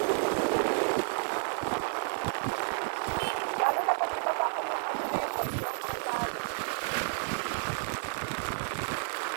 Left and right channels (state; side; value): silent; left; 57 dB below the other